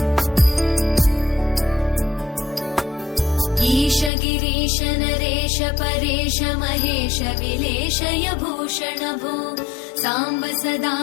ईश गिरीश नरेश परेश महेश विलेशय भूषण भो साम्ब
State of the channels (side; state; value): right; drops out; at 4.1 s